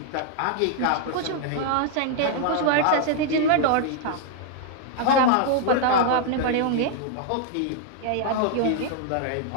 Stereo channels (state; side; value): different; both; correlation 0.00